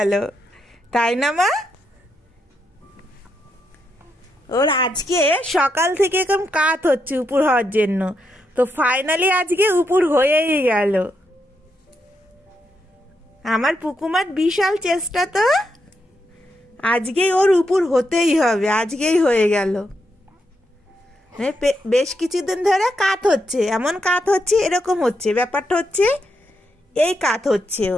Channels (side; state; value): both; normal; correlation 0.81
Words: তাই না মা? ওর আজকে সকাল থেকে এরকম কাত হচ্ছে উপর হওয়ার জন্য, তো ফাইনালি আজকে উপর হয়েই গেল। আমার পুকুমার বিশাল চেষ্টা, তো আজকেই ওর উপর হতেই হবে, আজকেই হয়ে গেল। বেশ কিছুদিন ধরে কাত হচ্ছে, এমন কাত হচ্ছে, এরকম হচ্ছে, ব্যাপারটা হচ্ছে এই কাত হচ্ছে।